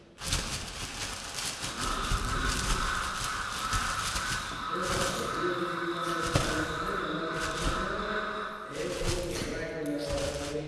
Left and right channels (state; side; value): identical; both; correlation 1.00